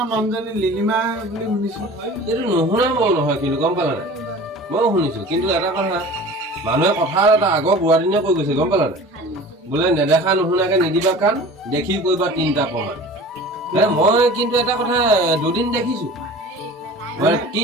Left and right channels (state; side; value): normal; both; correlation 0.40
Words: মানুহজনী লিলিমা বুলি শুনিছো এইটো নুশুনা মই নহয় কিন্তু গম পালা নাই ময়ো শুনিছো কিন্তু এটা কথা মানুহে কথা এটা আগৰ বুঢ়াদিনীয়ে কৈ গৈছে গম পালা নাই বোলে নেদেখা নুশুনাকে নিদিবা কাণ দেখি কৰিবা 3টা প্ৰমাণ মই কিন্তু এটা কথা দুদিন দেখিছো মানে